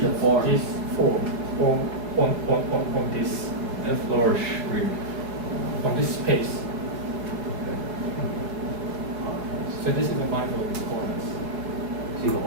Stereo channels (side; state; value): left; late; 4.7 ms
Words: a form. this form on this F lower shriek. on this space. So this is the manifold coordinates. So you've